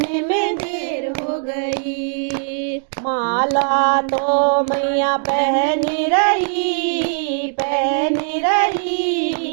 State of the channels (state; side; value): silent; left; digital silence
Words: में देर हो गई। माला तो मैया पहन